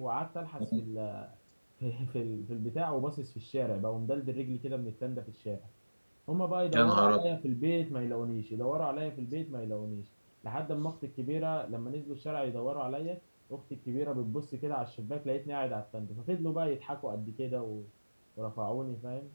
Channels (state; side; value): inverted; both; correlation -1.00